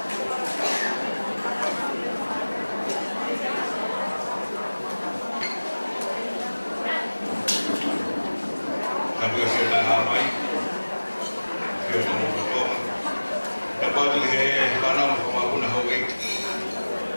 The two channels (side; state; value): both; inverted; correlation -1.00